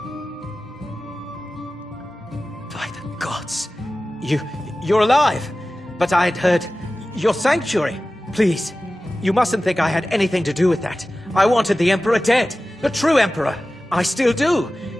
By the gods! You're alive! But I had heard your sanctuary. Please, you mustn't think I had anything to do with that. I wanted the Emperor dead. The true Emperor. I still do.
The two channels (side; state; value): both; normal; correlation 0.96